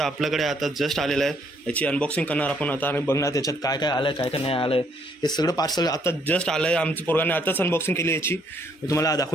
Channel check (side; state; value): both; normal; correlation 0.68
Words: आपल्याकडे आता जस्ट आलेलं आहे. याची अनबॉक्सिंग करणार आपण आता आणि बघणार त्याच्यात काय काय आलं आहे, काय काय नाही आलं आहे. हे सगळं पार्सल आता जस्ट आलं आहे. आमच्या पोराने आताच अनबॉक्सिंग केली याची. मी तुम्हाला